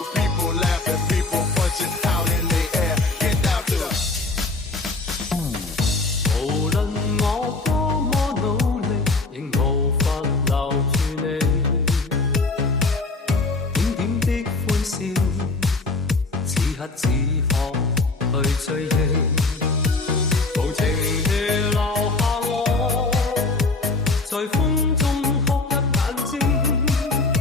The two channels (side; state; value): right; quieter; 3.6 dB